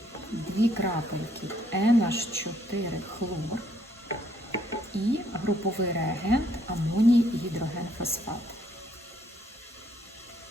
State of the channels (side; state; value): both; normal; correlation 0.68